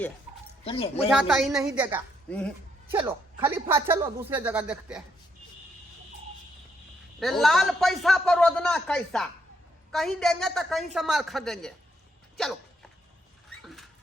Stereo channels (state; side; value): normal; both; correlation 0.75